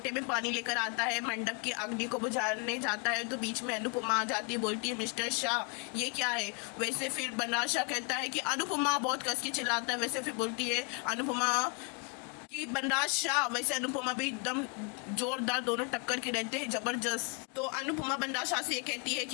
में पानी लेकर आता है, मंडप की अग्नि को बुझाने जाता है, तो बीच में अनुपमा आ जाती है, बोलती है मिस्टर शाह ये क्या है। वैसे फिर बनराज शाह कहता है कि अनुपमा, बहुत कस के चिल्लाता है। वैसे फिर बोलती है अनुपमा कि बनराज शाह। वैसे अनुपमा भी एकदम जोरदार, दोनों टक्कर के रहते हैं जबरदस्त। तो अनुपमा बनराज शाह से ये कहती है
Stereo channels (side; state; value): right; quieter; 34.4 dB